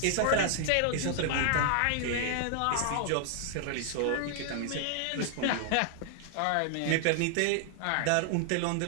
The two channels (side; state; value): both; different; correlation 0.00